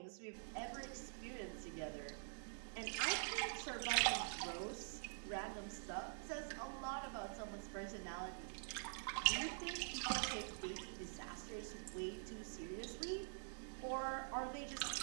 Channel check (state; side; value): silent; left; digital silence